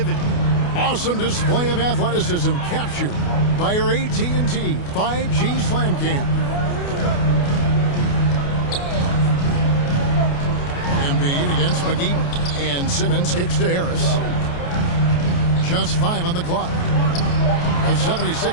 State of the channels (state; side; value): late; right; 28 ms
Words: Awesome display of athleticism captured by our AT&T 5G Slam Cam. Embiid against McGee. And Simmons kicks to Harris. Just 5 on the clock. The